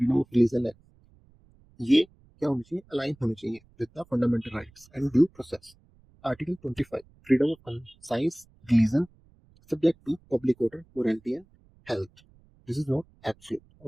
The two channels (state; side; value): noise; right; rumble, 30 dB below the sound